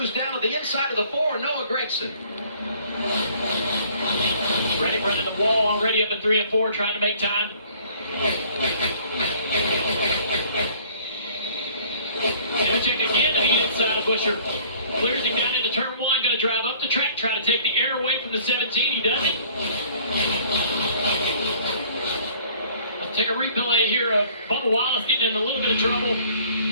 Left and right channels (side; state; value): both; inverted; correlation -0.55